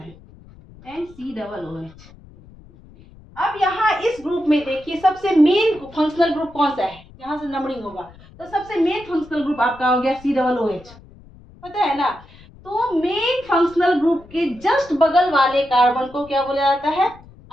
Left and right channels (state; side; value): noise; left; rumble, 23 dB below the sound